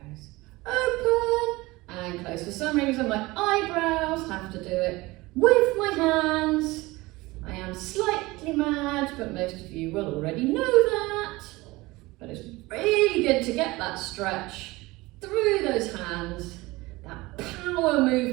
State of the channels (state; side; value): quieter; left; 21.1 dB